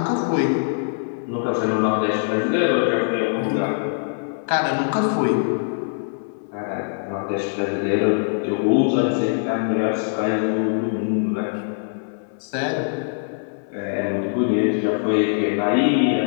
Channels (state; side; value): silent; right; 64 dB below the other